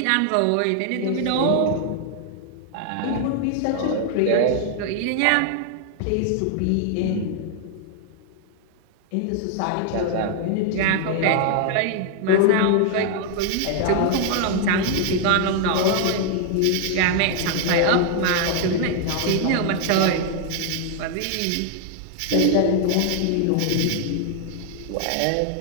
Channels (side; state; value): both; different; correlation 0.00